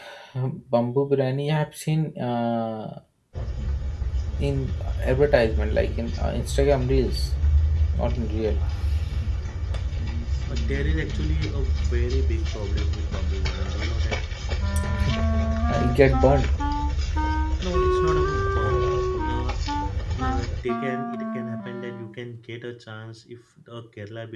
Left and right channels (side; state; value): both; identical; correlation 1.00